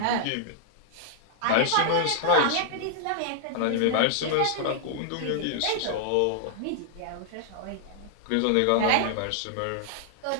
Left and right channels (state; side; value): different; both; correlation -0.01